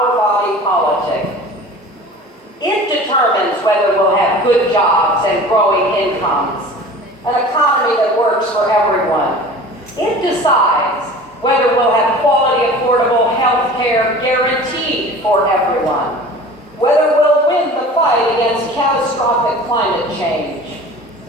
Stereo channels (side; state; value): both; normal; correlation 0.41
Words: body politic. It determines whether we'll have good jobs and growing incomes, an economy that works for everyone. It decides whether we'll have quality, affordable health care guaranteed for everyone, whether we'll win the fight against catastrophic climate change.